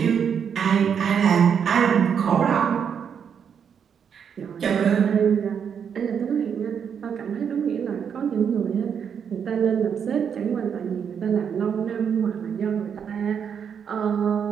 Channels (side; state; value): left; quieter; 7.5 dB